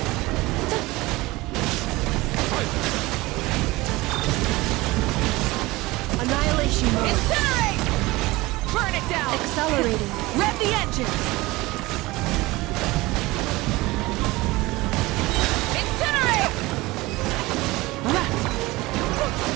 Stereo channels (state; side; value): quieter; left; 20.7 dB